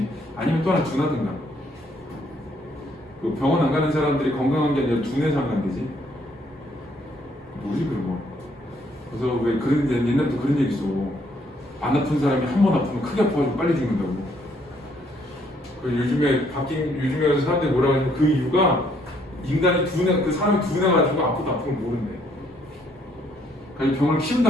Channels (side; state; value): both; normal; correlation 0.68